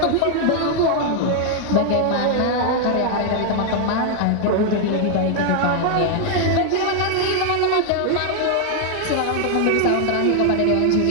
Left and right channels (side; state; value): both; different; correlation 0.00